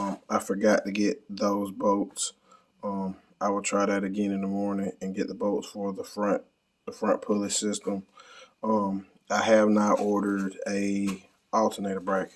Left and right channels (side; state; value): both; identical; correlation 1.00